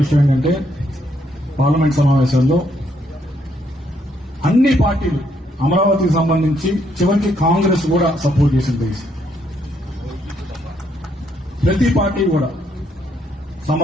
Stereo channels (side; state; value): both; normal; correlation 0.73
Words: విషయం ఏంటంటే పార్లమెంట్ సమావేశంలో అన్ని పార్టీలు అమరావతికి సంబంధించి చివరికి కాంగ్రెస్ కూడా సపోర్ట్ చేసింది. ప్రతి పార్టీ కూడా